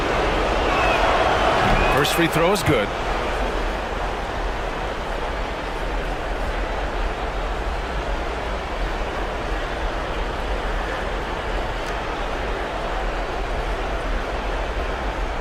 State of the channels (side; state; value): both; identical; correlation 1.00